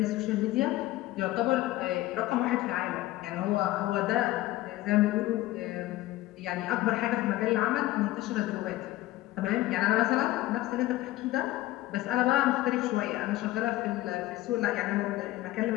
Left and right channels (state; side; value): quieter; right; 16.6 dB